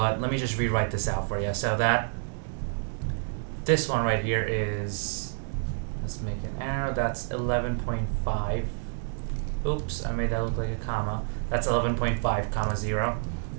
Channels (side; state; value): left; silent; digital silence